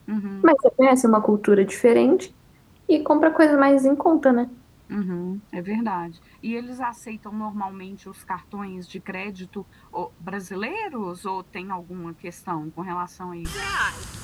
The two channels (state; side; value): identical; both; correlation 1.00